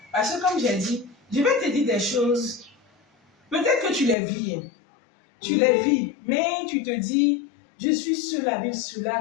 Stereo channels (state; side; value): drops out; right; at 4.2 s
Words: Parce que comme j'ai dit, je vais te dire des choses. Peut-être que tu les vis. Tu les vis, mais tu te dis, je suis seul avec